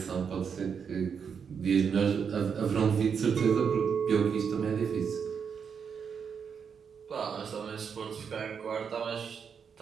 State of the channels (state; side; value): quieter; left; 6.7 dB